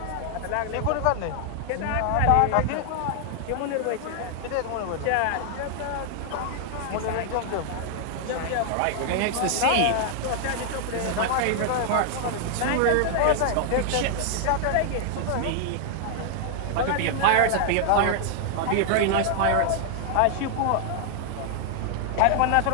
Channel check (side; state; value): both; different; correlation 0.00